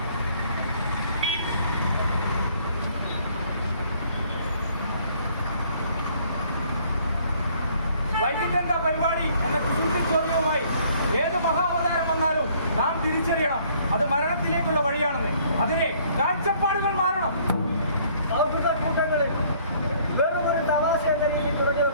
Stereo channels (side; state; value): both; inverted; correlation -0.61